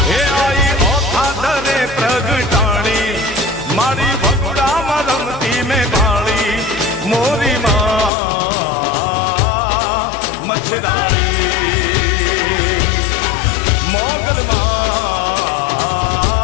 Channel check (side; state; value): right; drops out; at 8.1 s